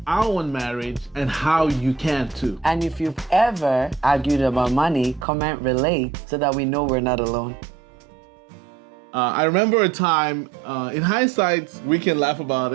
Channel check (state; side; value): drops out; left; at 5.2 s